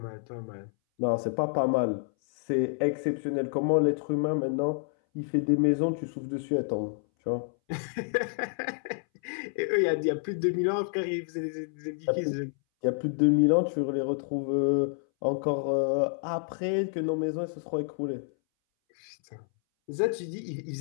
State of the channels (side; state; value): right; silent; 59 dB below the other